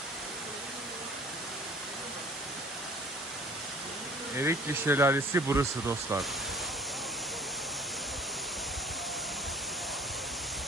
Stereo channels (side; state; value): both; normal; correlation 0.50